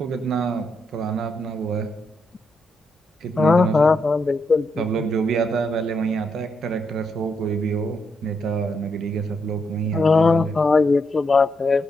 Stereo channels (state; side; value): normal; both; correlation 0.81